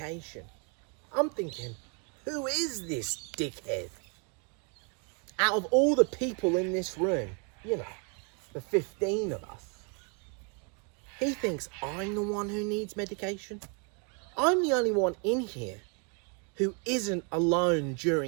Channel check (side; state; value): left; quieter; 36.7 dB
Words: I'm thinking, who is this dickhead? Out of all the people in this room, you know, the 15 of us, he thinks I'm the one who needs medication. I'm the only one in here who isn't alone